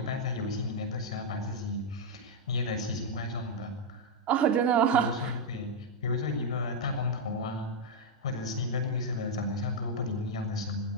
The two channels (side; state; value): both; normal; correlation -0.01